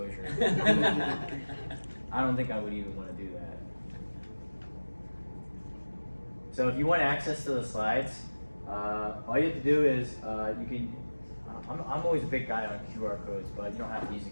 I don't think I would even want to do that. So if you want access to the slides, all you have to do is you can. I'm always a big guy on QR codes, but you don't have to use a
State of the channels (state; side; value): inverted; both; correlation -1.00